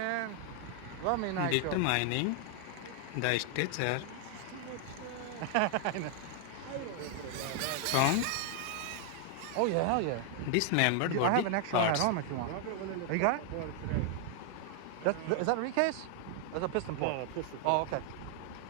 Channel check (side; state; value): both; different; correlation 0.00